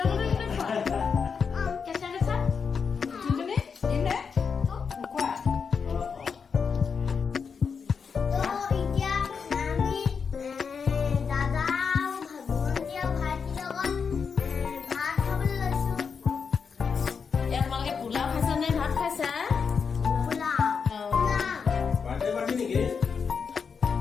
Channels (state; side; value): quieter; right; 5.9 dB